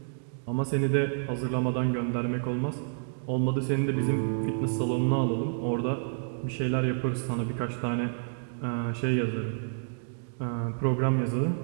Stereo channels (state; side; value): silent; left; digital silence